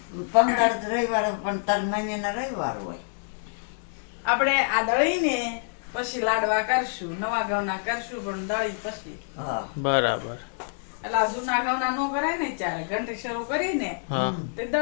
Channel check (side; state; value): right; silent; digital silence